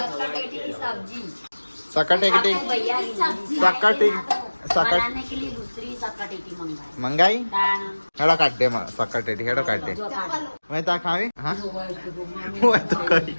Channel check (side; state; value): both; inverted; correlation -1.00